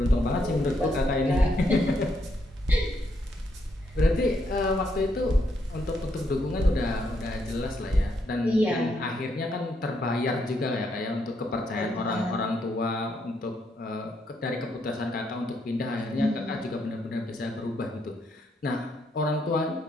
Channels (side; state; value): both; normal; correlation 0.76